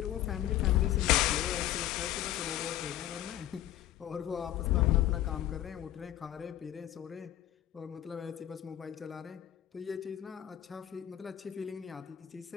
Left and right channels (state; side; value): quieter; right; 12.7 dB